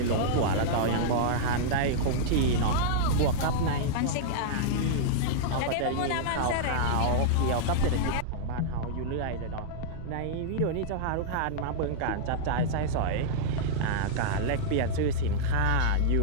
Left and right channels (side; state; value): both; different; correlation -0.02